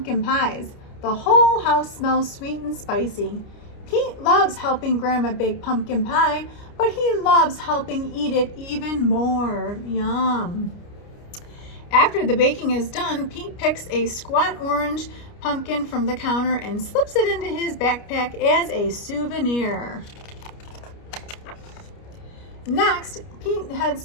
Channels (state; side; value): late; right; 29 ms